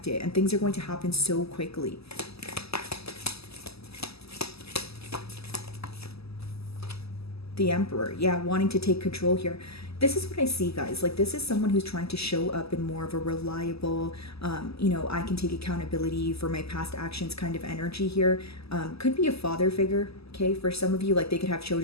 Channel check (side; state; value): right; late; 0.78 ms